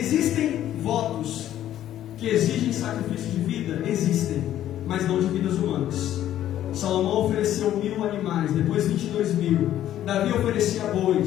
votos que exigem sacrifício de vida? Existem, mas não de vidas humanas. Salomão ofereceu 1000 animais, depois 22.000. Davi oferecia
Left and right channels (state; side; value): quieter; right; 12.1 dB